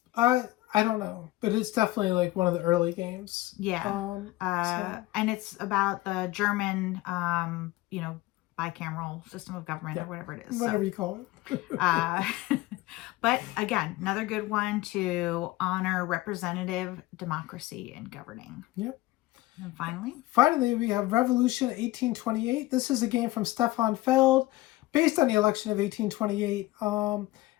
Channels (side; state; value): right; quieter; 18.1 dB